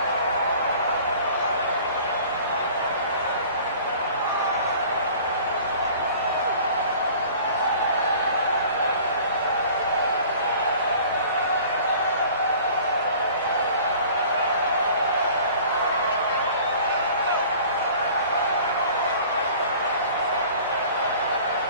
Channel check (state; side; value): inverted; both; correlation -0.47